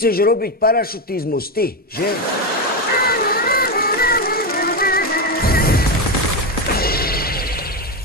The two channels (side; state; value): both; normal; correlation 0.11